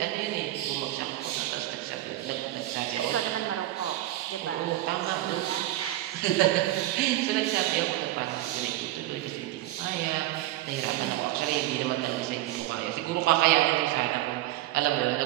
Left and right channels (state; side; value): quieter; left; 15.6 dB